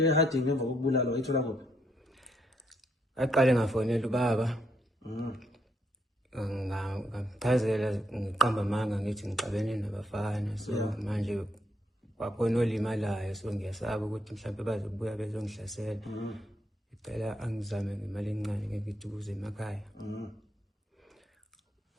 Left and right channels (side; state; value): both; normal; correlation 0.75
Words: eHarding ngemva kokubulala wayithola kuphi Aqale ngafonela ubaba. Ngamchazela ngiqamba amanga ngithi ngixabene nabafana so manje kwakhona olimalayo so ngiyasaba ukuthi mhlawumbe bazobuya bezongihlasela. Ngicela angizame ngemali encane ngithi ukuze emakhaya.